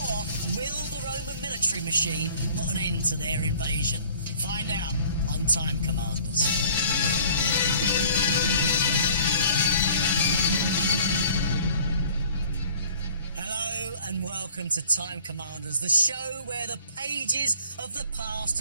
will the Roman military machine put an end to their invasion? Find out on Time Commanders. Hello and welcome to Time Commanders, the show where the pages of the past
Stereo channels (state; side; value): inverted; both; correlation -0.51